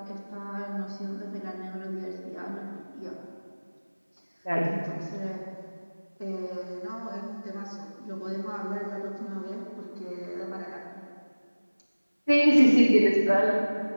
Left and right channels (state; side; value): inverted; both; correlation -1.00